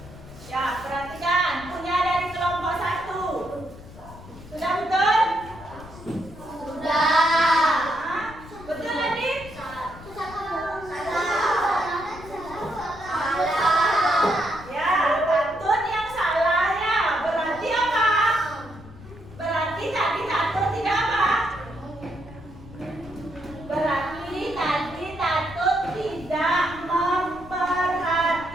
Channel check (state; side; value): noise; left; rumble, 17 dB below the sound